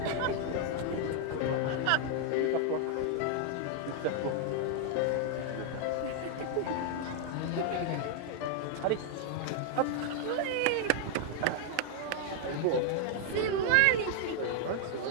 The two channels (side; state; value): both; different; correlation 0.00